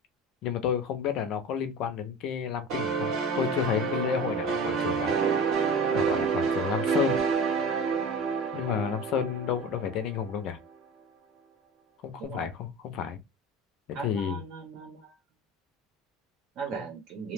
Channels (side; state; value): both; normal; correlation 0.33